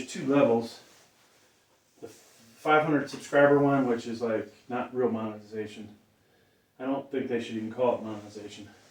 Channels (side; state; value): both; identical; correlation 1.00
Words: 2 levels. The 500 subscriber one, which is like not real monetization. I don't think they should even call it monetization.